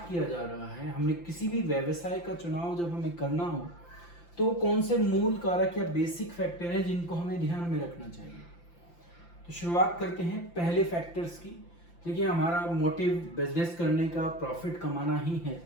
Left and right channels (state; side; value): late; right; 5.8 ms